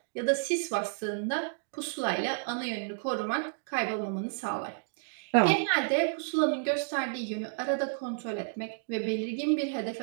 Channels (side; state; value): left; silent; digital silence